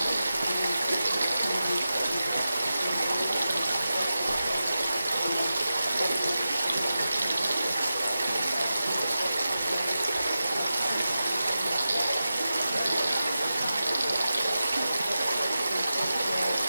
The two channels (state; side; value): inverted; both; correlation -0.92